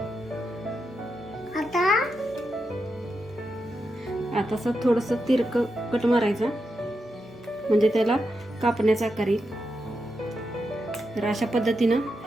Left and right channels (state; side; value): normal; both; correlation 0.86